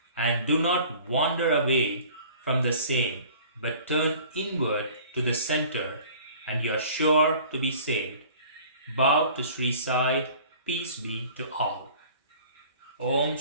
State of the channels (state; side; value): inverted; both; correlation -0.47